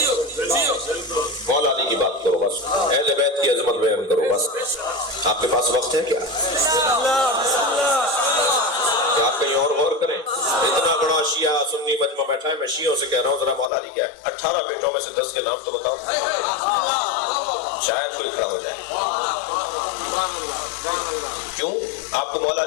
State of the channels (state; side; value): drops out; right; at 13.7 s